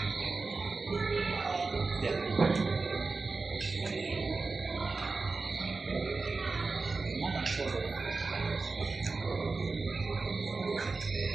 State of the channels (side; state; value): left; quieter; 4.0 dB